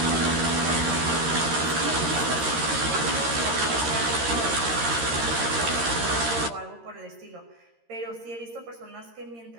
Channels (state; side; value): late; left; 13 ms